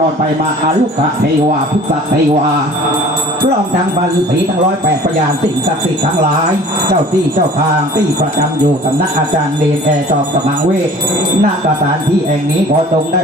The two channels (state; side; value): normal; both; correlation 0.47